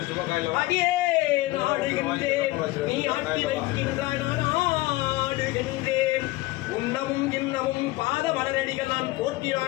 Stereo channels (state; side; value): quieter; right; 19.5 dB